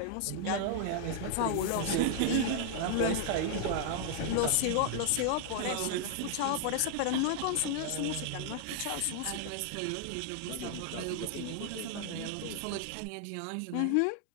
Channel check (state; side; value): different; both; correlation 0.00